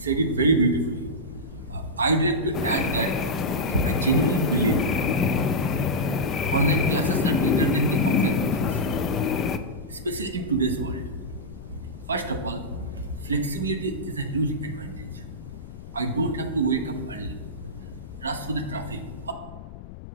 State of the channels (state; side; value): noise; left; rumble, 14 dB below the sound